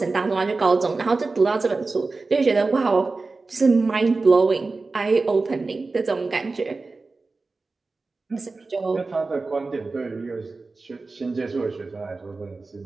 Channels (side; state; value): left; quieter; 3.7 dB